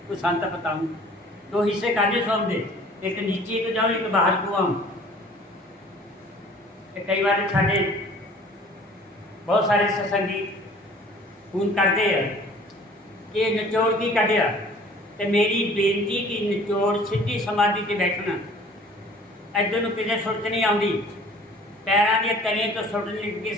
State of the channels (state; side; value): normal; both; correlation 0.50